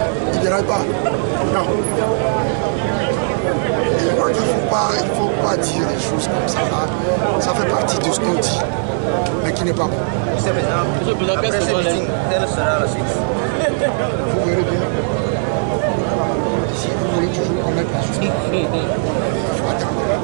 Il ne déraille pas. Non. Et je crois qu'il ne faut pas dire des choses comme ça. Ça fait partie de ce qu'on dit, mais qui n'est pas bon. Après ce meeting, quelle sera la suite? Vous verrez bien. Si vous voulez toujours connaître la justice, il faut attendre.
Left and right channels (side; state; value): left; silent; digital silence